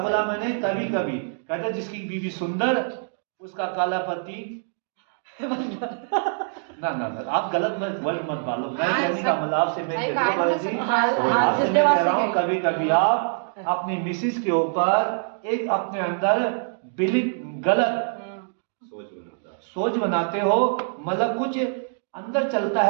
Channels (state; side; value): silent; left; digital silence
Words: मैंने? कभी कभी कहता जिसकी बीवी सुंदर उसका काला पति ना, आप गलत वर्ड मत डालो। मैं कहने का मतलब आपसे मैं कह रहा हूँ, कभी कभी आप अपनी मिसिस के ऊपर एक अपने अंदर गलत सोच बनाते हो। मतलब कुछ अंदर चलता